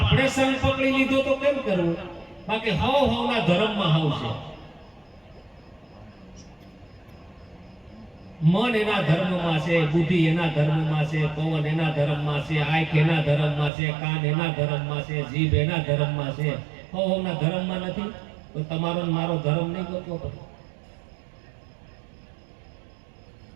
સંગ પકડી લીધો તો કેમ કરવું? બાકી હવના ધર્મમાં હાવ છે. મન એના ધર્મમાં છે, બુદ્ધિ એના ધર્મમાં છે, પવન એના ધર્મમાં છે, આંખ એના ધર્મમાં છે, કાન એના ધર્મમાં છે, જીભ એના ધર્મમાં છે. હવના ધર્મમાં નથી તો તમારો ને મારો ધર્મ નહીં ગોતવો પડે.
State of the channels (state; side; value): drops out; left; at 13.7 s